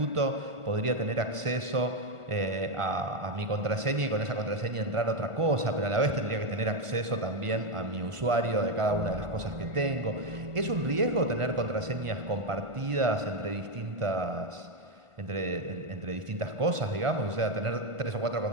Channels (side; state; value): left; late; 1.5 ms